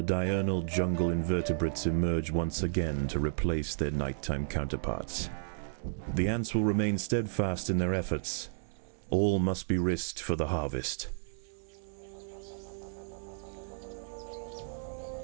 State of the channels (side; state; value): left; silent; digital silence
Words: diurnal jungle invertebrates emerge once again to replace their nighttime counterparts. The ants will remain steadfast in their efforts. All must be risked for the harvest.